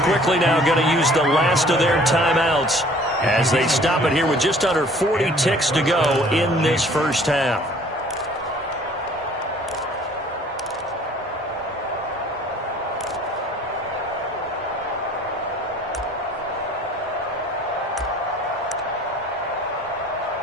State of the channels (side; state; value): both; normal; correlation 0.53